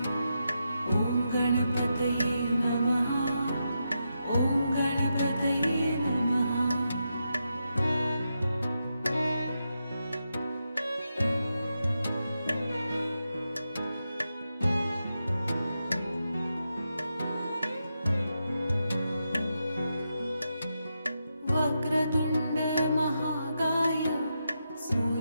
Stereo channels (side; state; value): both; inverted; correlation -0.86